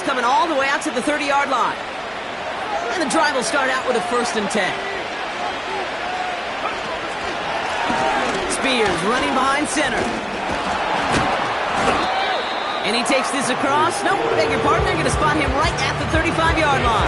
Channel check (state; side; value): identical; both; correlation 1.00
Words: coming all the way out to the 30-yard line. And the drive will start out with a 1st and 10. Spears running behind center. And he takes this across. Nope, beg your pardon. They're going to spot him right at the 35-yard